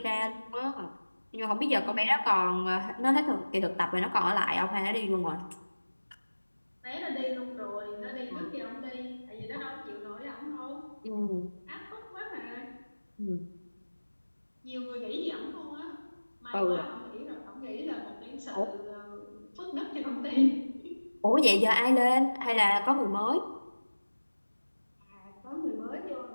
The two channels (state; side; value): inverted; both; correlation -1.00